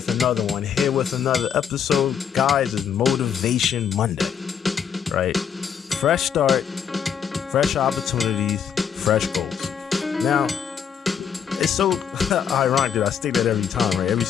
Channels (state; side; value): quieter; right; 7.7 dB